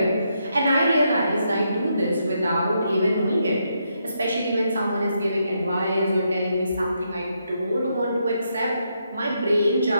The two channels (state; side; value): inverted; both; correlation -0.79